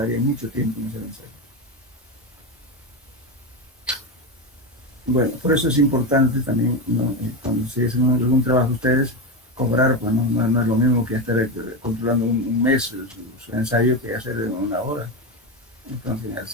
mucho tiempo en ese ensayo. Bueno, por eso es importante también, ¿no? Cuando se hacen algún trabajo ustedes, cobrar, pues no es lo mismo que estar controlando un mes su ensayo que hacer en 1 hora. Entonces,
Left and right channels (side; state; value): both; normal; correlation 0.15